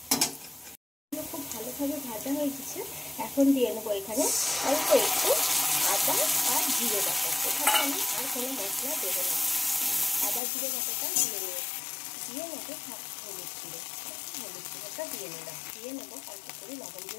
খুব ভালোভাবে ভাজা হয়ে গেছে। এখন দিয়ে নেবো এখানে অল্প একটু আদা আর জিরে বাটা। এখানে আমি আর কোনো মশলা দেবো না, আদা জিরে বাটাটা দিয়ে নেবো হলুদ গুঁড়োটা দিয়ে নেবো অল্প করে লবণ,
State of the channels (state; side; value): drops out; right; at 10.4 s